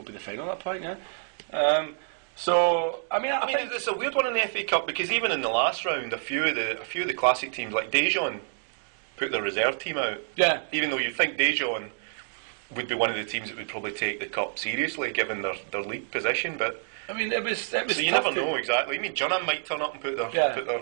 final at that point. Yeah. So I mean, it's a weird one in the FA Cup, because even in the last round, a few of the classic teams like Daejeon put their reserve team out. Yeah. Even though you think Daejeon would be one of the teams that would probably take the cup seriously, given their league position, but I mean, it was. So you never know exactly. I mean, Jeonnam might turn up and put their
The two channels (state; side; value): silent; left; 59 dB below the other